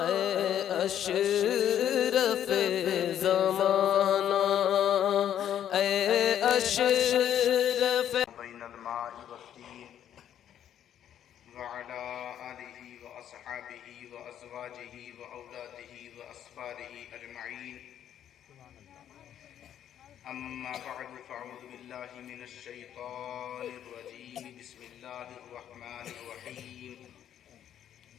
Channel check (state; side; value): quieter; right; 10.3 dB